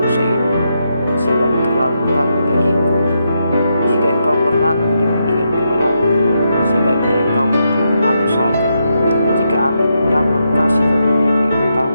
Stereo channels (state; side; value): inverted; both; correlation -0.82